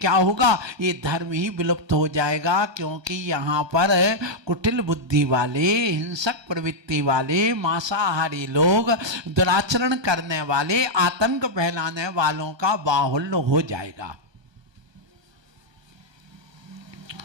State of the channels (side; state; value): left; late; 1.3 ms